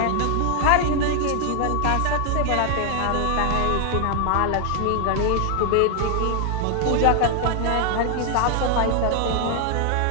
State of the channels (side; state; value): both; different; correlation 0.00